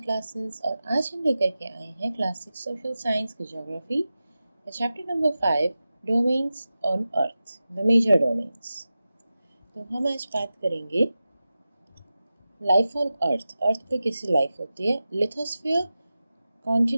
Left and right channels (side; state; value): both; inverted; correlation -0.94